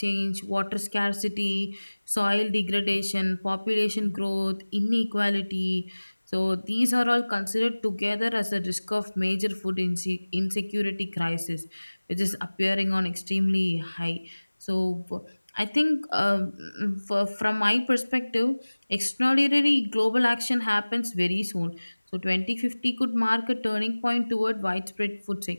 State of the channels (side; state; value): both; inverted; correlation -1.00